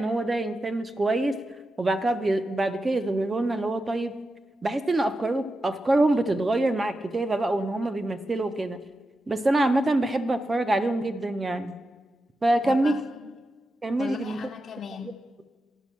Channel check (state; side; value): normal; both; correlation 0.90